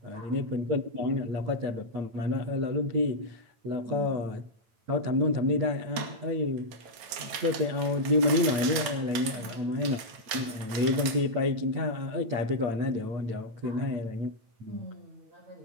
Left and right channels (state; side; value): late; left; 8.9 ms